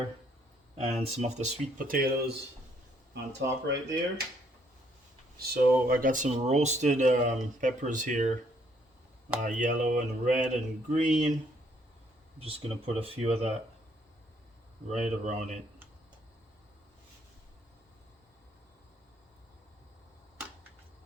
and some of the sweet potatoes on top right there. So I got some roasted peppers here, yellow and red and green. I'm just gonna put a few of that right around it.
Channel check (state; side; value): normal; both; correlation 0.68